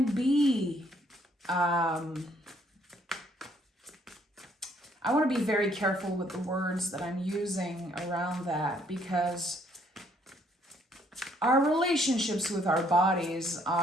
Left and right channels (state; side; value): normal; both; correlation 0.66